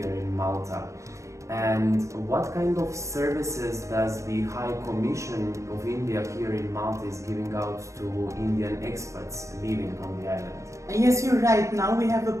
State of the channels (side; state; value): left; late; 0.15 ms